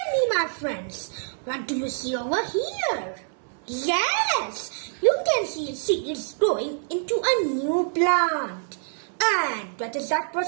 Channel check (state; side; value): silent; left; 61 dB below the other